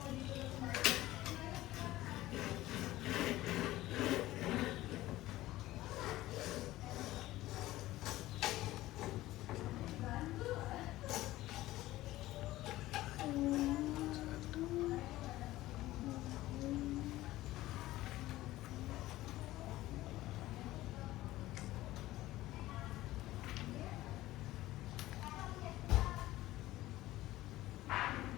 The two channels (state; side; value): quieter; right; 16.5 dB